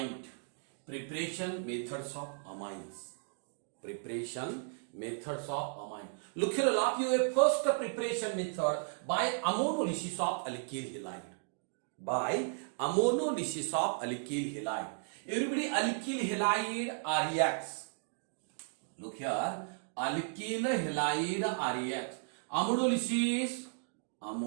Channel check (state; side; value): silent; left; digital silence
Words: preparation methods of amines. Preparation methods of amine. Look here, I'll have you a first preparation method by ammonolysis of alkyl halide. By ammonolysis of alkyl halide. Everybody, alkyl halide reacts. Look here, alkyl halide reacts. Ammonolysis,